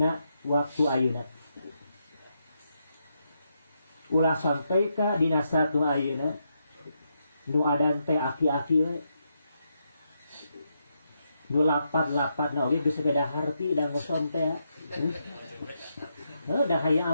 waktu ayeuna. Ulah sampai ka dina satu ayeuna nu adan teh aki-aki we. Nu lapat-lapat na oge geus beda harti da ngoson teh. Da hayya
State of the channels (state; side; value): inverted; both; correlation -0.81